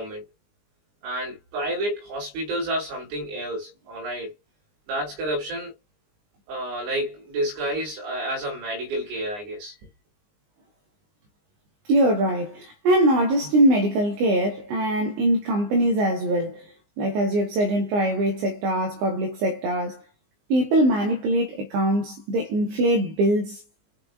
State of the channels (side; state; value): left; late; 19 ms